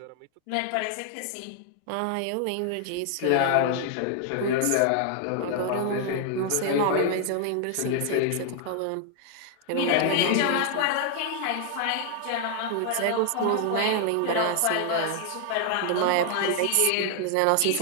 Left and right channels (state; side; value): different; both; correlation 0.00